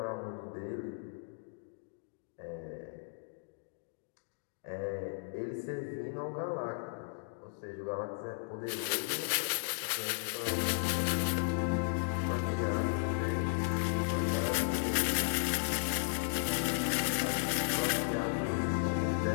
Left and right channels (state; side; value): silent; right; digital silence